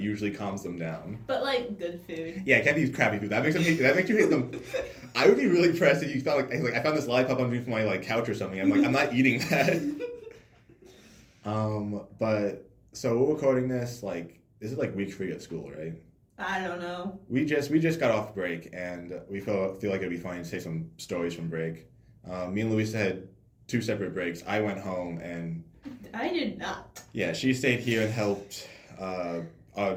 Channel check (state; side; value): identical; both; correlation 1.00